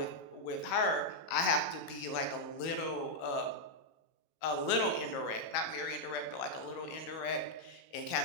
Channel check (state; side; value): late; right; 19 ms